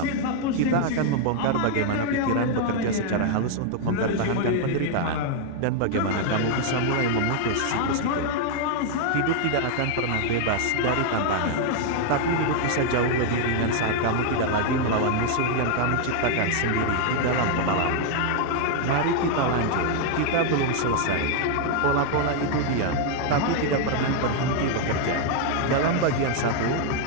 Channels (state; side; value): different; both; correlation 0.00